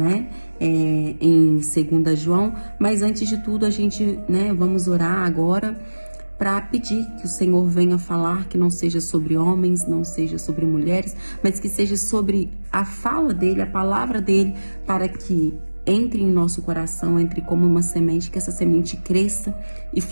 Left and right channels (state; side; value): inverted; both; correlation -1.00